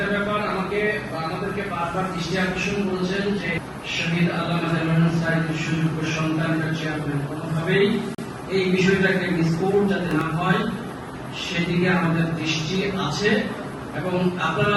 ব্যাপার আমাদেরকে বারবার দৃষ্টি আকর্ষণ করেছেন যে শহীদ আল্লামা দেলোয়ার সাইদের সুযোগ্য সন্তানরা চেয়ারম্যান, কোনোভাবেই এই বিষয়টাকে মিসকোট যাতে না হয় সেদিকে আমাদের দৃষ্টি আছে। এবং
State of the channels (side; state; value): both; identical; correlation 1.00